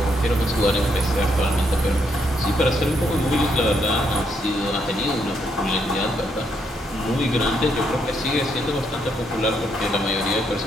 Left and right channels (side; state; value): both; normal; correlation 0.75